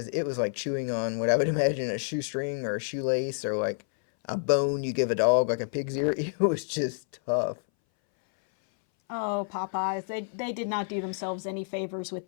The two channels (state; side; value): silent; right; 59 dB below the other